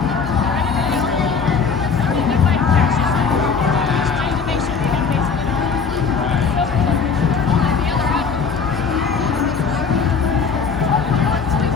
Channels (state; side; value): quieter; right; 5.6 dB